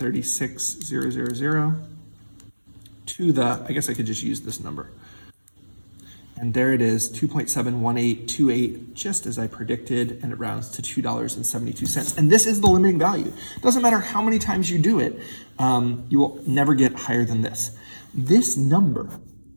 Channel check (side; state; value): both; inverted; correlation -1.00